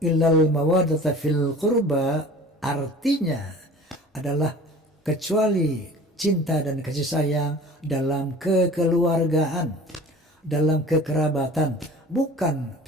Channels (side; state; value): both; normal; correlation 0.43